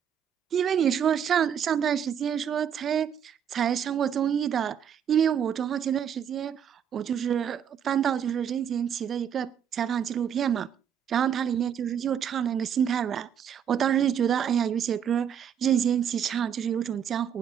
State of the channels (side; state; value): left; quieter; 8.5 dB